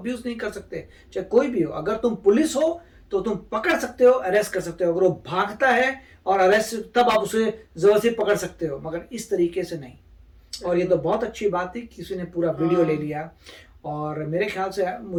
नहीं कर सकते, चाहे कोई भी हो। अगर तुम पुलिस हो तो तुम पकड़ सकते हो, अरेस्ट कर सकते हो। अगर वो भागता है और अरेस्ट, तब आप उसे जबरदस्ती पकड़ सकते हो, मगर इस तरीके से नहीं। और ये तो बहुत अच्छी बात थी, किसी ने पूरा वीडियो ले लिया। और मेरे ख्याल से,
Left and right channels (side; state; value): both; identical; correlation 1.00